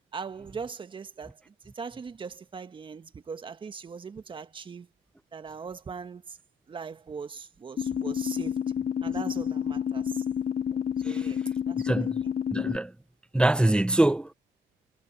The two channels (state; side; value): normal; both; correlation 0.75